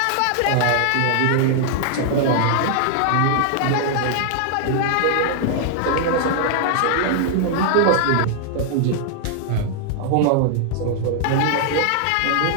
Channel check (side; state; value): both; different; correlation 0.00